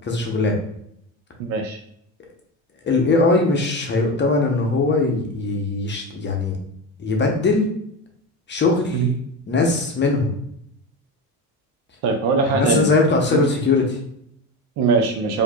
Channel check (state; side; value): normal; both; correlation 0.22